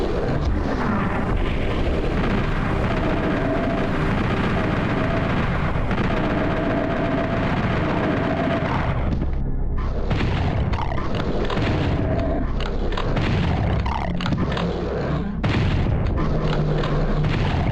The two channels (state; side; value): identical; both; correlation 1.00